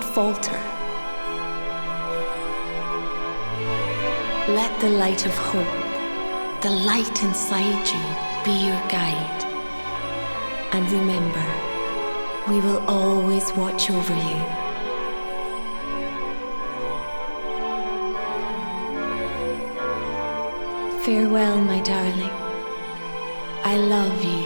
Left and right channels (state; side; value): inverted; both; correlation -1.00